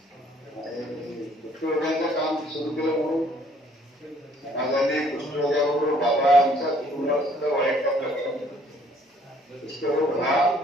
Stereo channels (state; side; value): normal; both; correlation 0.61